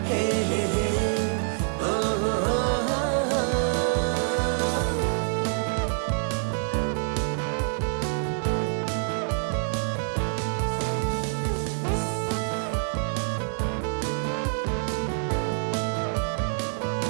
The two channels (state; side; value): silent; left; digital silence